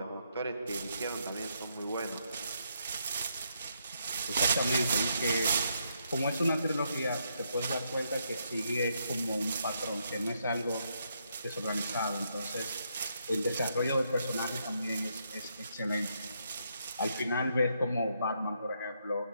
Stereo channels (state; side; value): inverted; both; correlation -0.77